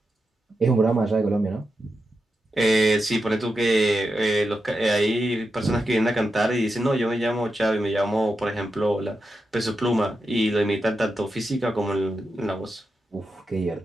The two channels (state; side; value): normal; both; correlation 0.88